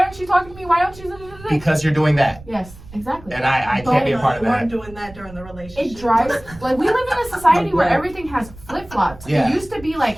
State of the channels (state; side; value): noise; right; rumble, 19 dB below the sound